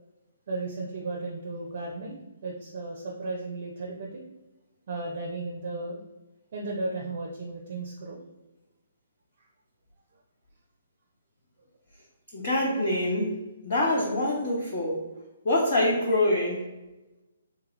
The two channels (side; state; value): both; inverted; correlation -0.62